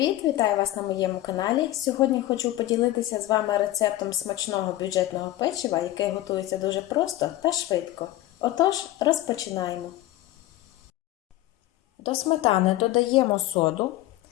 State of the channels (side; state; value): right; quieter; 15.6 dB